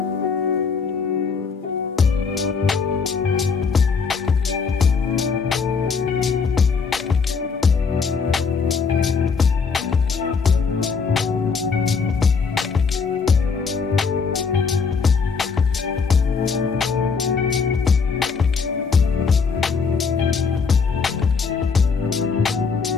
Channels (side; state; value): right; quieter; 5.3 dB